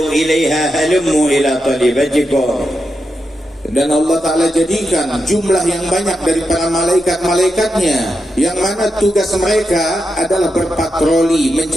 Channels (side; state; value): both; normal; correlation 0.86